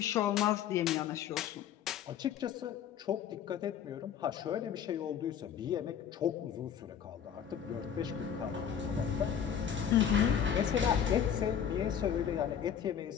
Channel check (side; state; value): right; quieter; 8.6 dB